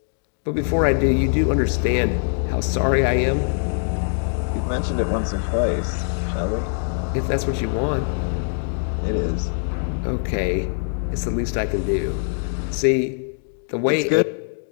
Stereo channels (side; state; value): right; silent; digital silence